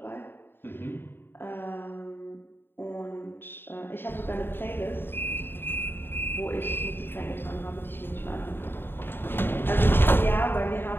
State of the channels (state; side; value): late; right; 0.10 ms